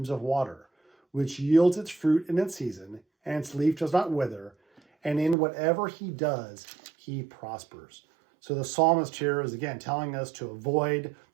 of water, which yields its fruit in its season, and its leaf does not wither, and in whatever he does, he prospers. So the psalmist here is again telling us to avoid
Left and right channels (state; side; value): drops out; left; at 5.4 s